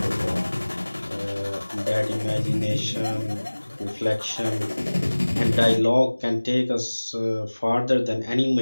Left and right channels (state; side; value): inverted; both; correlation -1.00